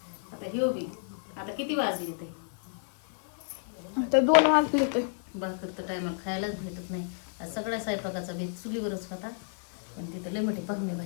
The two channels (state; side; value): silent; right; digital silence